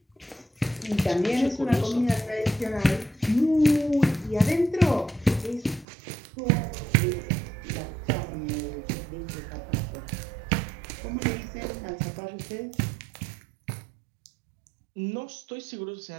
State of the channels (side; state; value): left; drops out; at 5.9 s